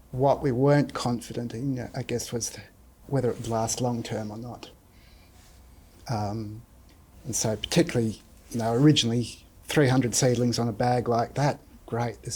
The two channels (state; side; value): identical; both; correlation 1.00